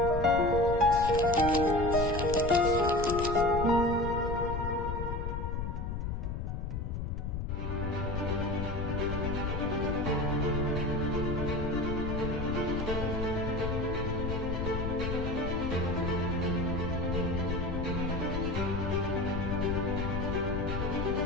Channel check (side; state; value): left; noise; rumble, 3 dB below the sound